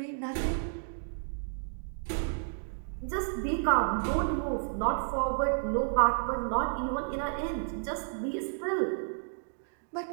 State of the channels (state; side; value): silent; left; digital silence